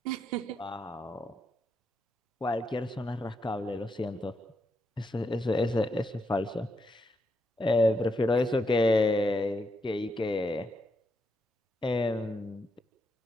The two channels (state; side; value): normal; both; correlation 0.81